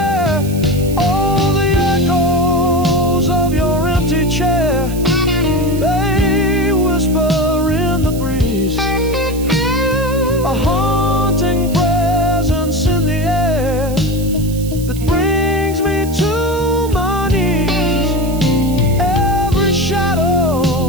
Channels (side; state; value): right; noise; hiss, 15 dB below the sound